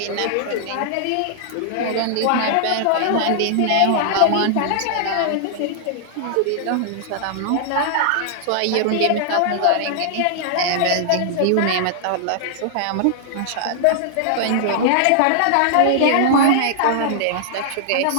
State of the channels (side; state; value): both; different; correlation -0.01